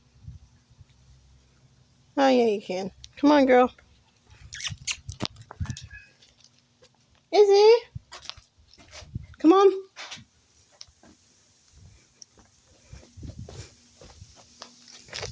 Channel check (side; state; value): both; identical; correlation 1.00